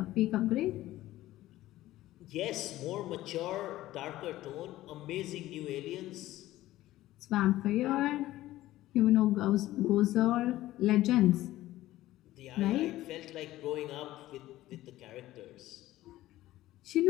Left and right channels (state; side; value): quieter; right; 15.6 dB